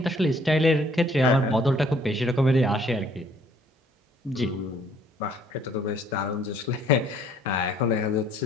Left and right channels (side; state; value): both; normal; correlation 0.61